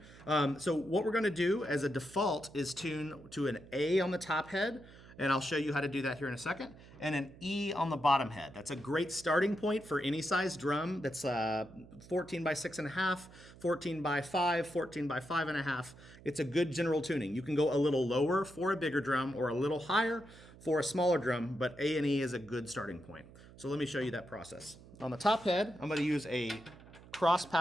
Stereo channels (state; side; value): noise; right; hum, 20 dB below the sound